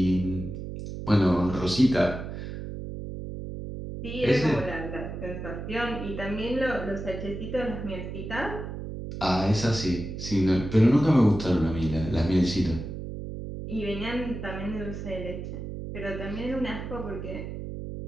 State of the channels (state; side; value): noise; right; hum, 7 dB below the sound